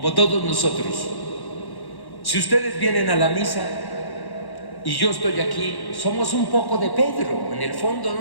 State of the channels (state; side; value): late; right; 1.1 ms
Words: todos nosotros. Si ustedes vienen a la misa y yo estoy aquí, somos un poco de Pedro. En el fondo